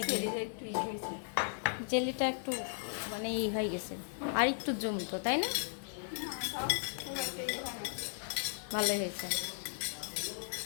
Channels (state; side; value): silent; right; 54 dB below the other